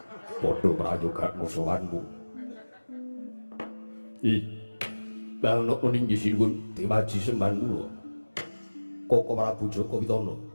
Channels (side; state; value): both; inverted; correlation -1.00